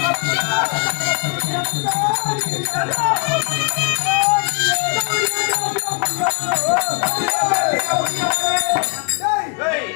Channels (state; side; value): quieter; right; 38.0 dB